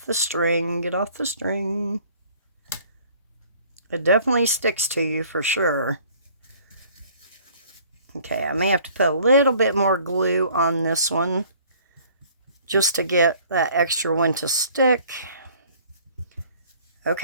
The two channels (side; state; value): both; inverted; correlation -0.54